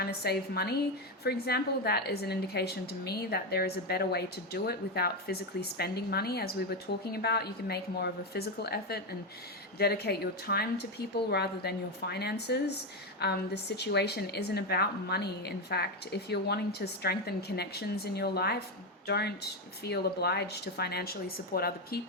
to save money, for example, that is an indication to me that there is a better way to do it without physically spending money. As we were talking about, you can make more of a physical effort and dedicate your time to people rather than your finances. The situation isn't about money. In fact, if you're wanting to strengthen connections in your life, don't feel obliged to financially support other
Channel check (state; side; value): normal; both; correlation 0.10